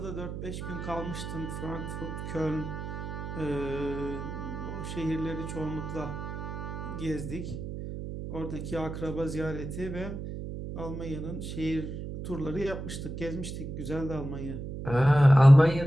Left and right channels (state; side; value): noise; right; hum, 7 dB below the sound